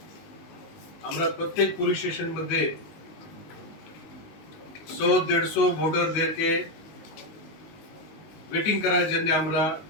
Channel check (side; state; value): right; late; 19 ms